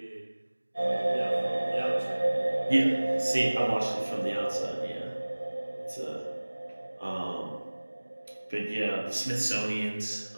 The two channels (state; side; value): inverted; both; correlation -1.00